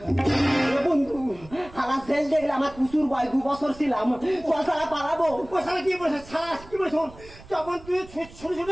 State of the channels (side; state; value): right; noise; rumble, 20 dB below the sound